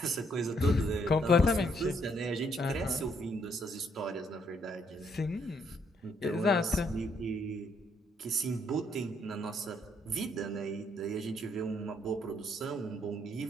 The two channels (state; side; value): normal; both; correlation 0.70